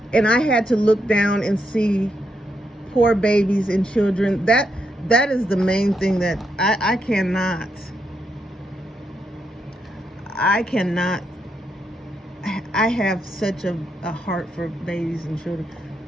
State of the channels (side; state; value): both; normal; correlation 0.81